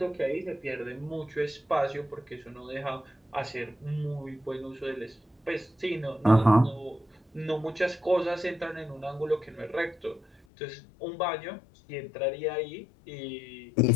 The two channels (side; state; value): right; drops out; at 10.4 s